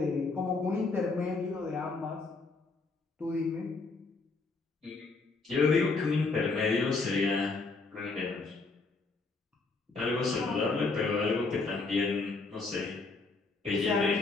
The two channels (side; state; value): right; quieter; 4.0 dB